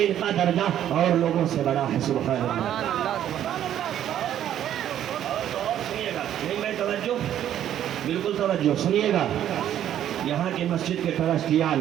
ان کا درجہ اور لوگوں سے بڑا ہے. سبحان اللہ. سنیے گا, نہیں میں توجہ, بالکل توجہ سنیے گا. یہاں کی مسجد کے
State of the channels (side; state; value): left; quieter; 10.9 dB